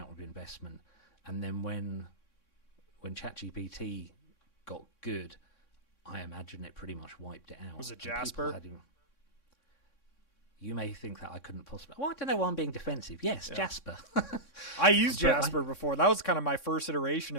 of investment, and then when ChatGPT got good, I imagine it pretty much wiped it out. Was it And Jasper? You may think that I couldn't possibly. Well, I don't know why I'm being defensive. Yes, Yeah. Jasper. I used But Jasper before. That was kind of my first iteration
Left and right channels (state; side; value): late; right; 3.6 ms